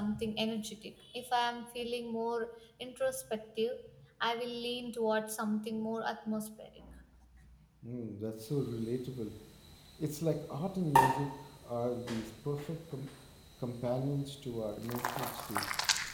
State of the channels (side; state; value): both; identical; correlation 1.00